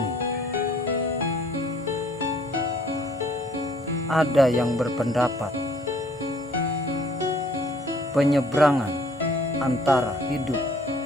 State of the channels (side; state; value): both; normal; correlation 0.58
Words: Ada yang berpendapat penyeberangan antara hidup